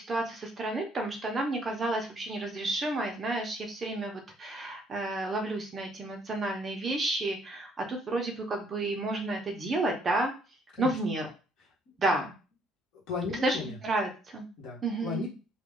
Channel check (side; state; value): both; normal; correlation 0.66